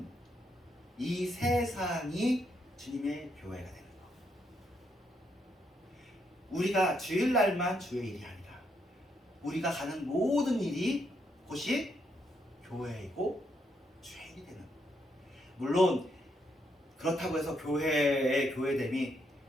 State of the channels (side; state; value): both; normal; correlation 0.77